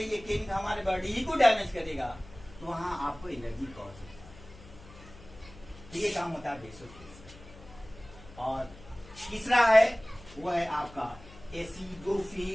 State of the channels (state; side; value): noise; left; hum, 20 dB below the sound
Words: केमिकल हमारे बॉडी ही को डैमेज करेगा, तो वहां आपको एलर्जी कॉज होता है। ये काम होता है बेसोफिल्स। और तीसरा है, वो है आपका